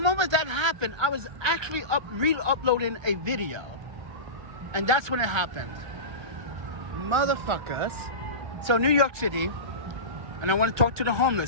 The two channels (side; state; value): left; late; 1.3 ms